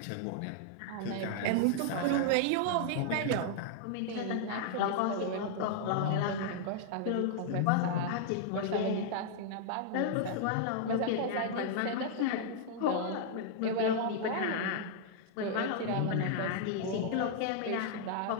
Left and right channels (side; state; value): both; different; correlation -0.01